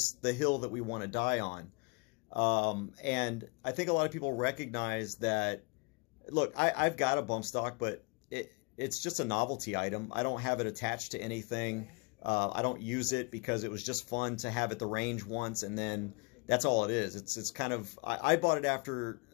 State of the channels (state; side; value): quieter; right; 29.6 dB